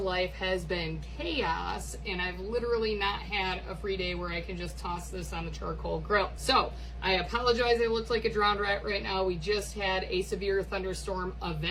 has been chaos and I've literally not had a free day where I can just toss this on the charcoal grill. So I apologize, I look like a drowned rat right now. We just had a severe thunderstorm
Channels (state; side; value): identical; both; correlation 1.00